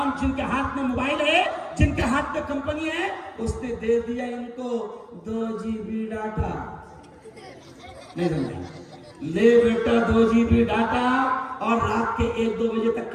جن کے ہاتھ میں موبائل ہے, جن کے ہاتھ میں کمپنی ہے, اس نے دے دیا ان کو 2 GB ڈاٹا. نہیں سمجھا؟ لے بیٹا 2 GB ڈاٹا اور رات کے 1-2 بجے تک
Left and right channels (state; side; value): identical; both; correlation 1.00